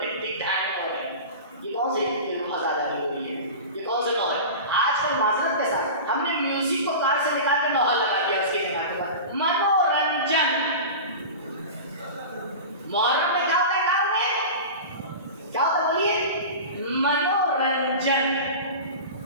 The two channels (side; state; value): both; inverted; correlation -0.31